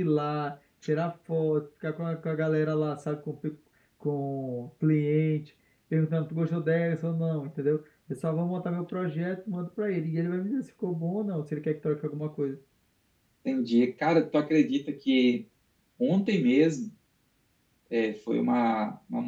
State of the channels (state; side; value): identical; both; correlation 1.00